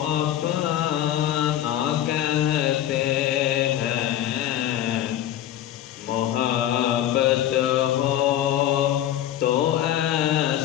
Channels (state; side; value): quieter; right; 11.8 dB